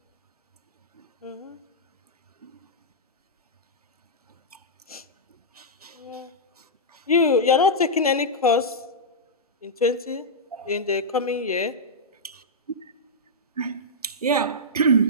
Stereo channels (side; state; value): both; normal; correlation -0.10